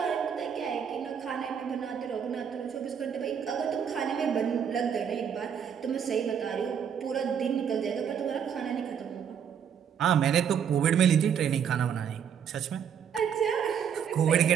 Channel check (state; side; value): quieter; left; 7.9 dB